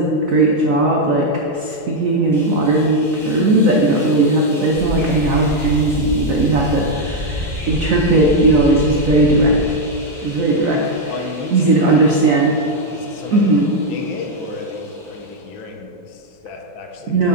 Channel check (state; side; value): normal; both; correlation 0.01